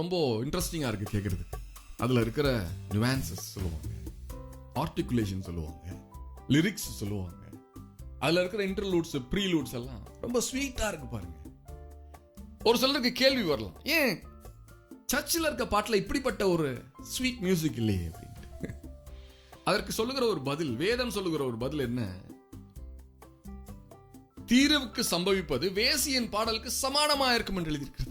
இன்ட்ரெஸ்டிங்கா இருக்கு கேட்கறது. அதுல இருக்கிற நியூவான்சஸ் சொல்லுவாங்க, ஆர்டிகுலேஷன் சொல்லுவாங்க, லிரிக்ஸ் சொல்லுவாங்க, அதுல இருக்கிற இன்டர்லூட்ஸ் ப்ரீலூட்ஸ் எல்லாம் ரொம்ப ஸ்வீட்டா இருக்கு பாருங்க. ஒரு சிலருக்கு கேள்வி வரலாம், ஏன் சர்ச்சில் இருக்க பாட்டுல இப்படிப்பட்ட ஒரு ஸ்வீட் மியூசிக் இல்லையே அப்படின்ட்டு. அதற்கு சொல்லுகிற ஒரு பதில், வேதம் சொல்லுகிற ஒரு பதில் என்ன? தீர்வுக்கு சம்பவிப்பது வேசியின் பாடலுக்கு சமானமா இருக்கும் என்று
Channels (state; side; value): identical; both; correlation 1.00